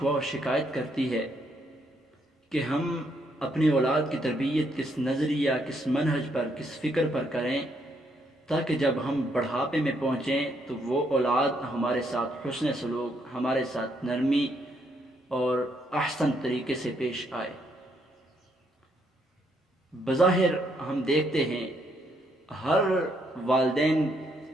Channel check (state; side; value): normal; both; correlation 0.73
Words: و شکایت کرتی ہے کہ ہم اپنی اولاد کی تربیت کس نظریہ، کس منہج پر، کس فکر پر کریں تاکہ جب ہم بڑھاپے میں پہنچیں تو وہ اولاد ہمارے ساتھ حسن سلوک، ہمارے ساتھ نرمی اور احسن طریقے سے پیش آئے۔ بظاہر ہم دیکھتے ہیں ہر والدین